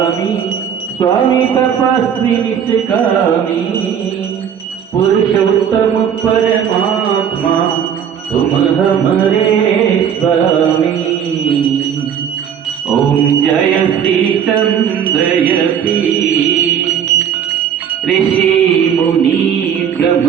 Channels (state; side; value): quieter; left; 8.3 dB